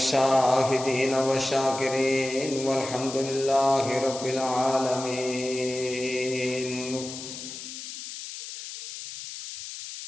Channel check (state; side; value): noise; left; hiss, 10 dB below the sound